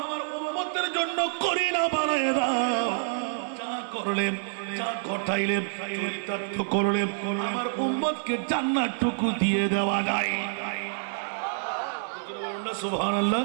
উম্মতের জন্য করি না বানায় দাও। যা করলে, যা ঘটাইলে, চরিতার্থ করলে আমার উম্মতকে জান্নাতটুকু দিয়ে দেওয়া যায়। সুবহানাল্লাহ।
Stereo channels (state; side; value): silent; left; digital silence